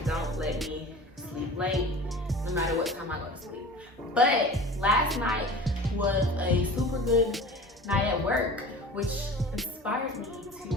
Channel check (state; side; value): normal; both; correlation 0.38